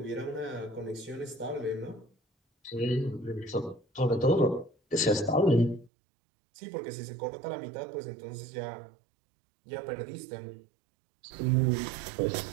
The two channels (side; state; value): left; drops out; at 5.9 s